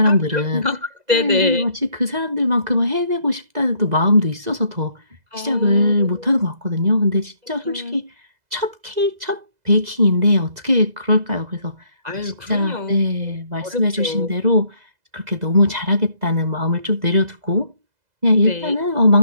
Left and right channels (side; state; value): left; late; 2.0 ms